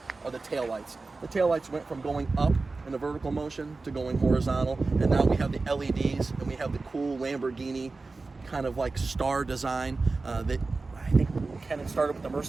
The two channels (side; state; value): left; quieter; 3.7 dB